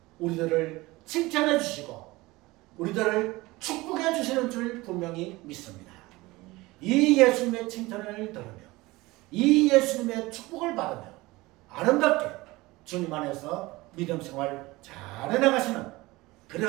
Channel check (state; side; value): quieter; left; 20.7 dB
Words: 우리들을 칭찬해 주시고 우리들을 축복해 주시는 줄 분명히 믿습니다. 이 예수님의 칭찬을 들으며 이 예수님의 축복을 받으며 아름답게 주님 안에서 믿음 생활 잘 해나가시는